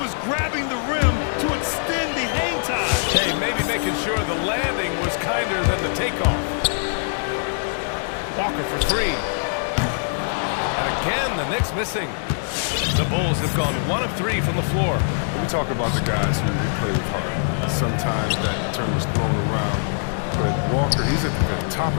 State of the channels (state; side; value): silent; right; digital silence